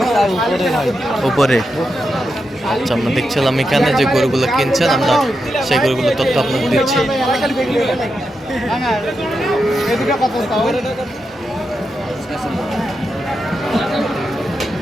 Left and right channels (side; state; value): both; normal; correlation 0.87